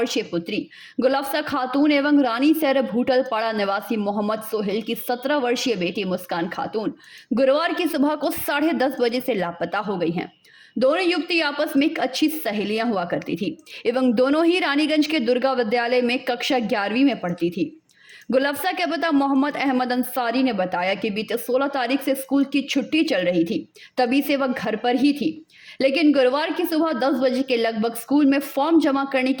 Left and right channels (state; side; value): identical; both; correlation 1.00